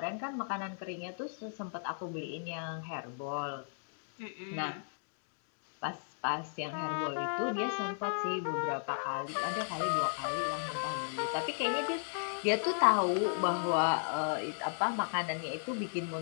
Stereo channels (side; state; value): right; silent; digital silence